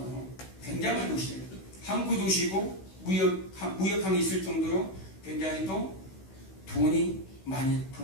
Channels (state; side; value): late; right; 16 ms